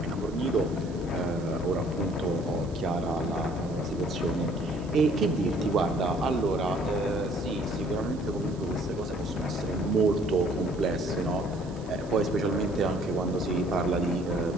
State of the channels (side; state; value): right; noise; hiss, 24 dB below the sound